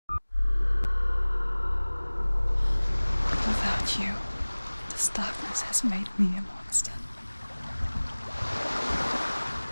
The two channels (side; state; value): both; inverted; correlation -1.00